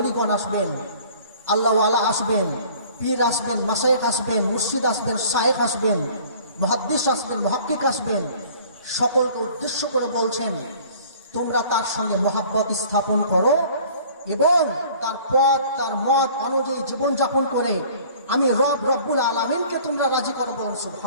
আসবেন, আল্লাহ ওয়ালা আসবেন, পীর আসবেন, মাশায়েখ আসবেন, মুর্শিদ আসবেন, শায়েখ আসবেন, মুহাদ্দিস আসবেন, মুহাক্কিক আসবেন, সকলকে উদ্দেশ্য করে বলছেন তোমরা তার সঙ্গে মহব্বত স্থাপন করো এবং তার পথ তার মত অনুযায়ী জীবনযাপন করে আমি রব্বুল আলামিনকে তোমরা রাজি করো। বলুন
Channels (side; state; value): both; inverted; correlation -0.50